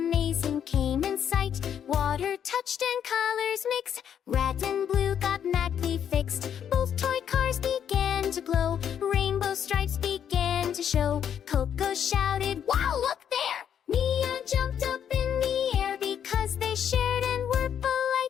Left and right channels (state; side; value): quieter; right; 8.8 dB